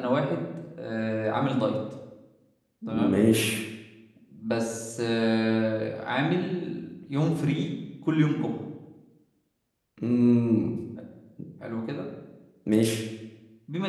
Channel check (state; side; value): identical; both; correlation 1.00